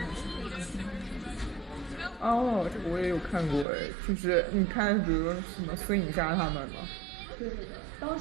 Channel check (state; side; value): drops out; left; at 3.7 s